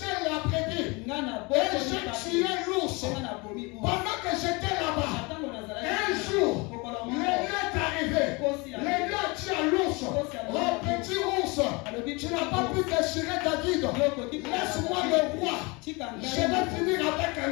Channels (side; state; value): right; quieter; 27.1 dB